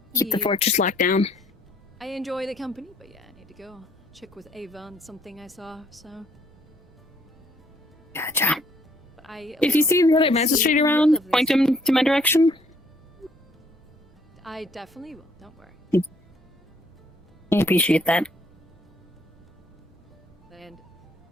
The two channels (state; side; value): normal; both; correlation 0.65